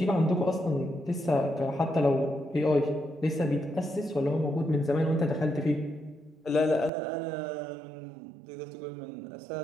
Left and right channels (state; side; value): drops out; left; at 6.9 s